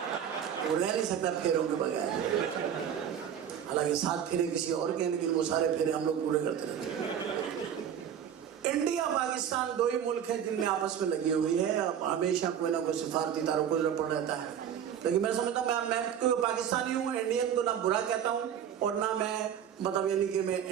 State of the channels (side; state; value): left; quieter; 9.0 dB